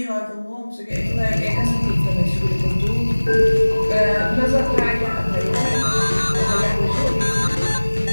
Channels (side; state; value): both; inverted; correlation -1.00